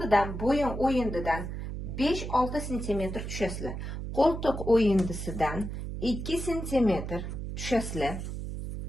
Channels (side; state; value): right; noise; hum, 6 dB below the sound